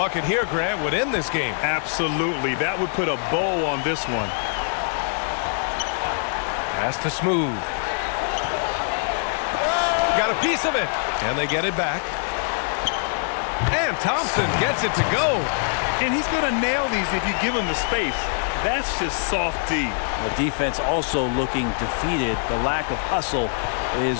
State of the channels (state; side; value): silent; right; digital silence